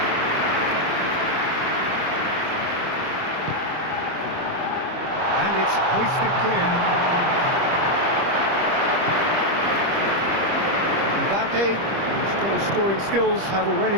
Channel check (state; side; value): late; left; 25 ms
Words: It's hoisted clear. Mbappe, whose goal-scoring skills have already